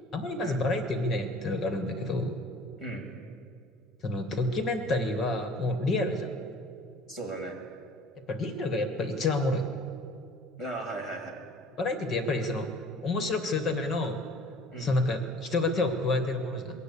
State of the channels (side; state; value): both; normal; correlation 0.48